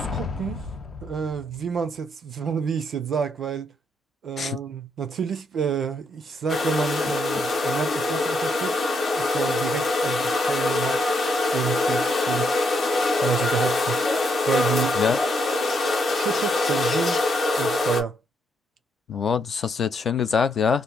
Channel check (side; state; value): both; normal; correlation 0.76